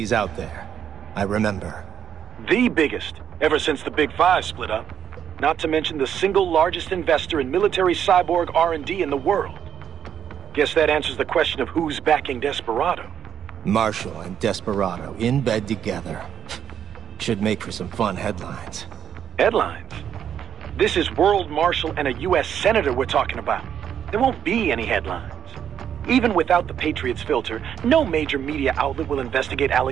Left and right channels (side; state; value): left; quieter; 8.8 dB